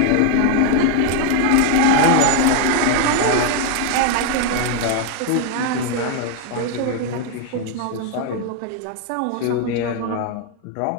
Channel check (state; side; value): different; both; correlation 0.00